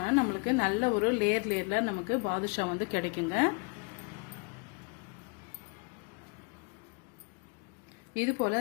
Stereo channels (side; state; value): right; quieter; 33.7 dB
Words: நம்மளுக்கு நல்ல ஒரு லேயர்ல நமக்கு பாதுஷா வந்து கிடைக்குங்க. இது